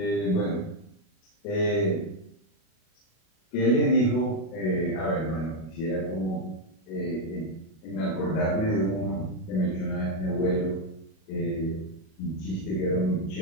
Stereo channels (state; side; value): late; right; 37 ms